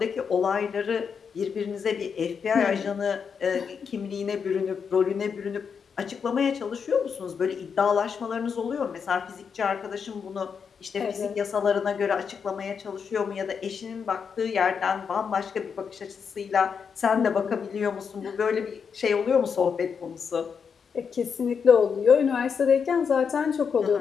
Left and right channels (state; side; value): quieter; right; 6.4 dB